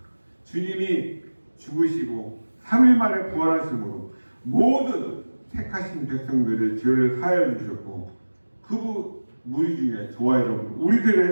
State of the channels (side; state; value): both; inverted; correlation -1.00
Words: 주님이 죽으시고 3일 만에 부활하심으로 모든 택하신 백성들의 죄를 사하여 주셨고 그 무리 중에 저와 여러분